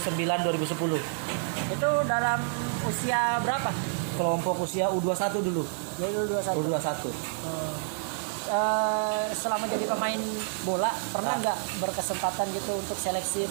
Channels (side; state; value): left; silent; 59 dB below the other